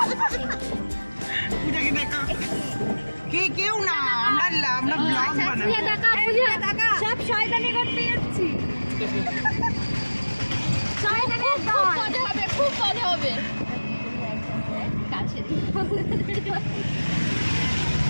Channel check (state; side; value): inverted; both; correlation -1.00